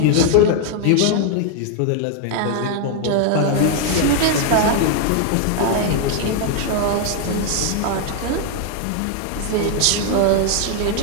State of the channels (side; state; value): both; different; correlation 0.00